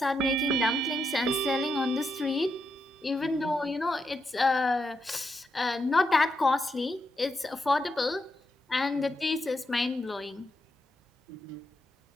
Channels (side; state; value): both; normal; correlation 0.83